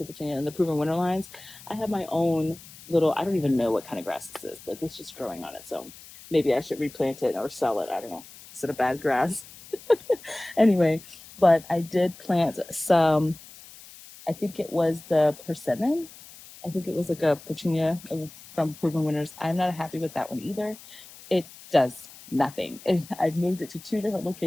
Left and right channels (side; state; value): left; noise; hiss, 19 dB below the sound